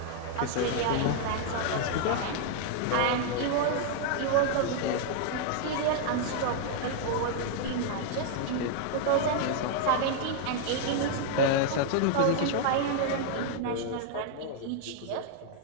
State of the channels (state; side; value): different; both; correlation 0.00